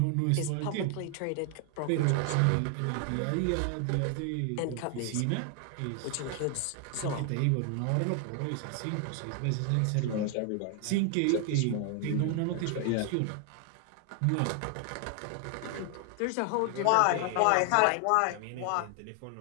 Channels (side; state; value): both; different; correlation 0.00